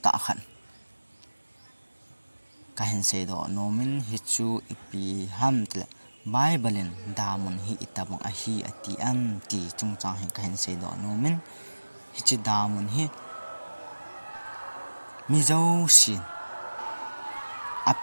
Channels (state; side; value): inverted; both; correlation -1.00